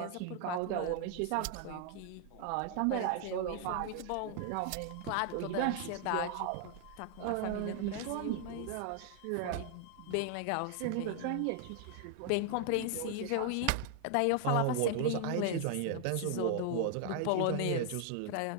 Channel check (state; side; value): different; both; correlation 0.00